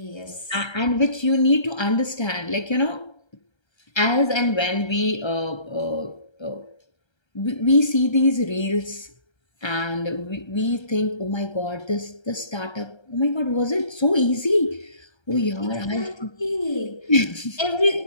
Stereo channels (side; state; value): right; late; 1.3 ms